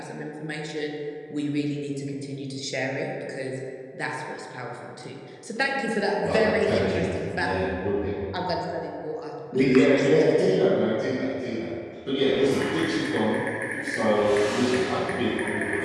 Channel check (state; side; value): identical; both; correlation 1.00